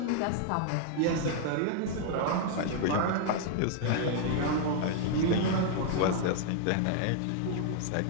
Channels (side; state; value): both; different; correlation 0.00